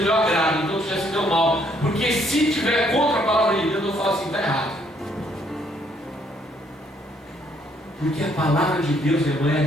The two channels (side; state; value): both; normal; correlation 0.68